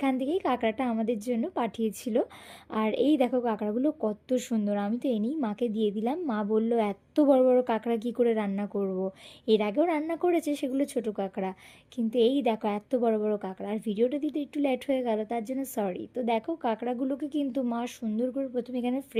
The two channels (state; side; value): identical; both; correlation 1.00